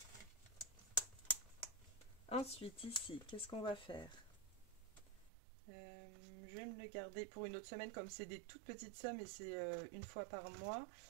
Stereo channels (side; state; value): left; drops out; at 5.3 s